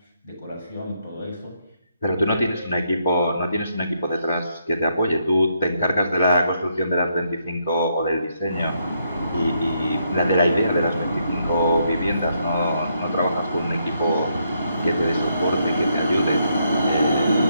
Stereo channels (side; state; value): both; inverted; correlation -0.76